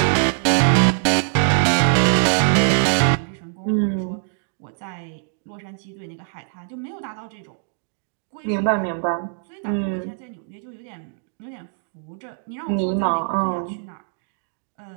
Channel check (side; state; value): left; silent; digital silence